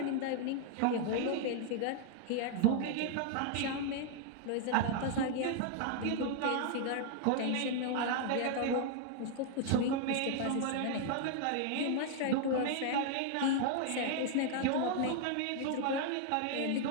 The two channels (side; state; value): both; different; correlation 0.00